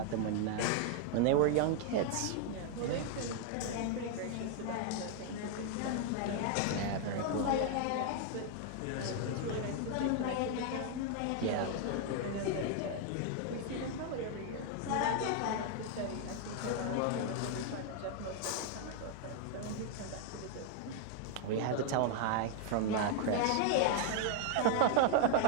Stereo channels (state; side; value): different; both; correlation 0.00